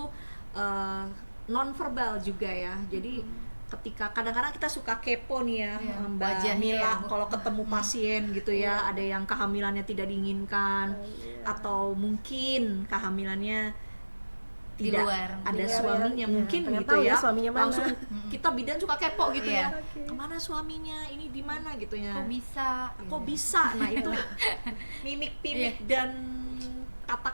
non-verbal juga ya. Jadi ketika kadang-kadang kita suka kepo nih ya, Mbak Mila, kalau ketemu pasien gitu ya, ada yang kehamilannya tidak diinginkan, atau mungkin kehamilannya tidak ada suaminya, mungkin gitu ya, langsung kita bidan suka kepo gitu ya, kemana suaminya, ini di mana gitu ya, kok bisa, nah itu mimik-mimik dan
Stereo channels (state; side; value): inverted; both; correlation -1.00